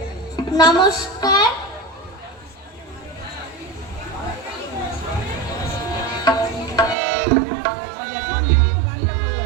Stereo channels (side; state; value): left; drops out; at 7.0 s